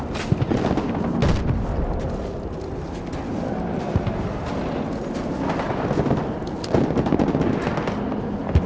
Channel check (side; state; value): both; identical; correlation 1.00